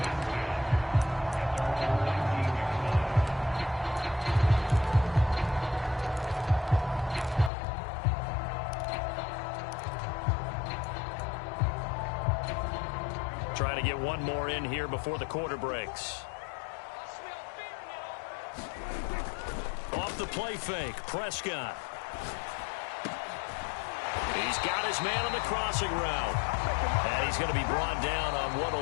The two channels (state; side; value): drops out; right; at 7.5 s